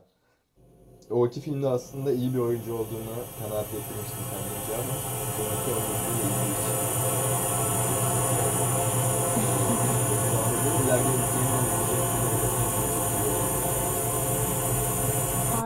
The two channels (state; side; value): identical; both; correlation 1.00